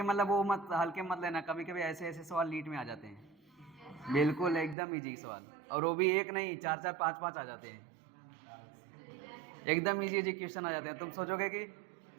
मतलब वो मत हल्के मत लेना, कभी कभी ऐसे ऐसे सवाल नीट में आ जाते हैं, बिल्कुल एकदम इजी सवाल, और वो भी एक नहीं 4-4 5-5 आ जाते हैं, एकदम इजी इजी क्वेश्चन आ जाते हैं। तुम सोचोगे कि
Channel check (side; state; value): left; drops out; at 4.8 s